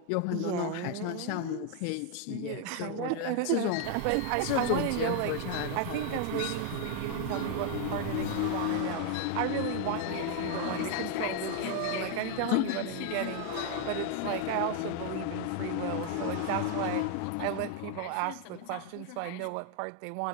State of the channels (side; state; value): both; different; correlation 0.01